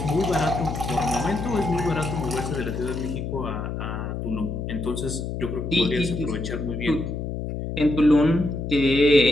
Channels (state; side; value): noise; left; hum, 4 dB below the sound